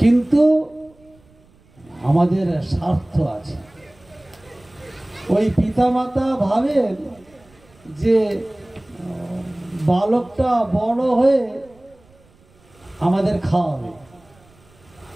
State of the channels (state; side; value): noise; right; rumble, 30 dB below the sound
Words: কিন্তু আমাদের স্বার্থ আছে। ওই পিতামাতা ভাবেন যে বালকটা বড় হয়ে আমাদের খাওয়াবে,